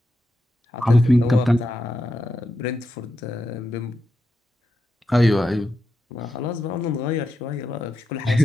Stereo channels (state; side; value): normal; both; correlation 0.86